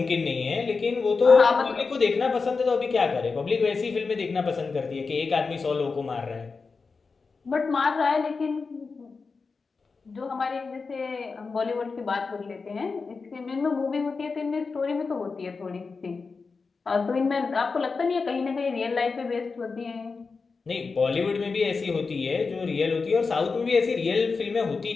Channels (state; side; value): quieter; right; 4.6 dB